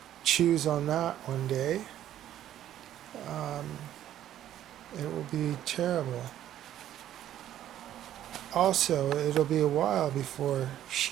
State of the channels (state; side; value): quieter; left; 11.8 dB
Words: chews on that one day, it will be terrible. Also, it'll be a while before